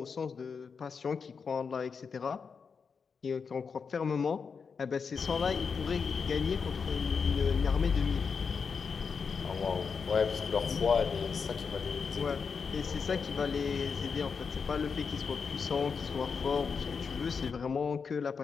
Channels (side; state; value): right; quieter; 5.7 dB